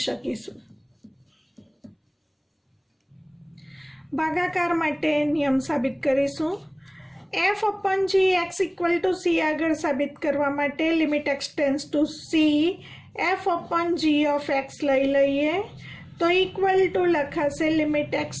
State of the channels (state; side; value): identical; both; correlation 1.00